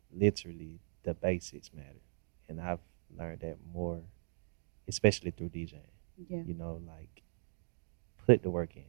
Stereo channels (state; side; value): silent; left; digital silence